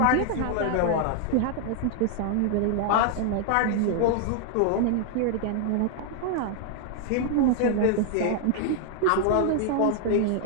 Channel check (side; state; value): both; different; correlation 0.00